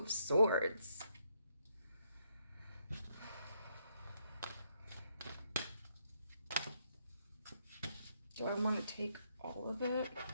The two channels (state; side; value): inverted; both; correlation -0.75